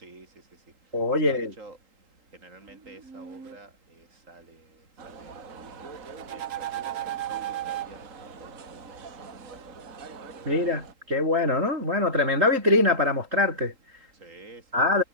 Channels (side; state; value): left; late; 3.8 ms